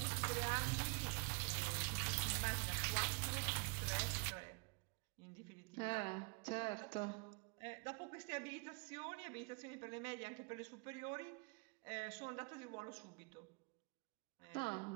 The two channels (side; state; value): left; quieter; 32.4 dB